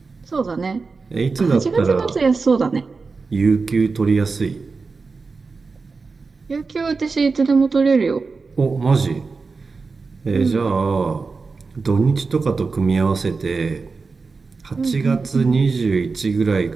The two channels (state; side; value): quieter; left; 4.4 dB